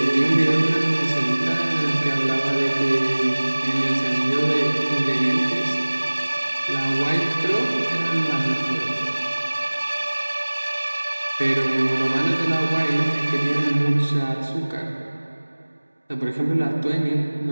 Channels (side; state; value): both; inverted; correlation -1.00